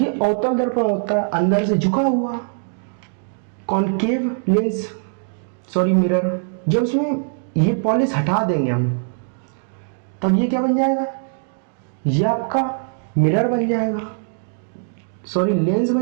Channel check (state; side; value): silent; left; digital silence